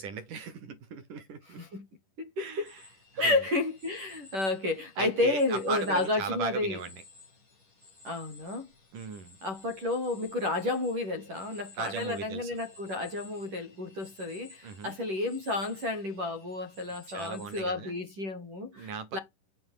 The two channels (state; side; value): late; left; 10 ms